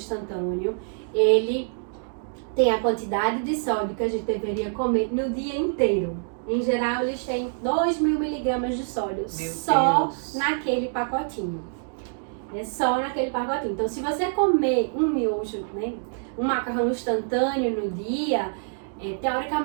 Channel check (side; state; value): left; silent; digital silence